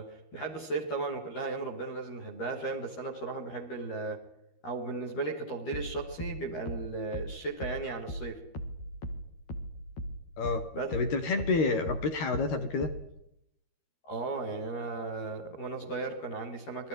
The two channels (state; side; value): late; right; 13 ms